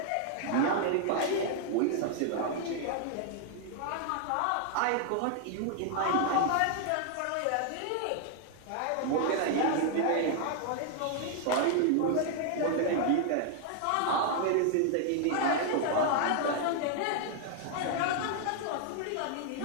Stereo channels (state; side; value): different; both; correlation 0.00